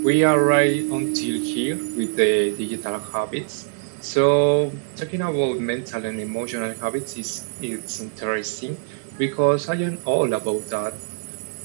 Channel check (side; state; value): left; silent; digital silence